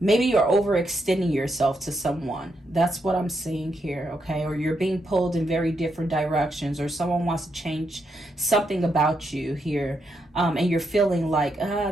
Maybe you're overextending yourself to someone. That's what I'm seeing here, okay? Or you're being pulled in very different directions, or someone wants to change something about you here. And you're feeling like,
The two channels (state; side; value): normal; both; correlation 0.81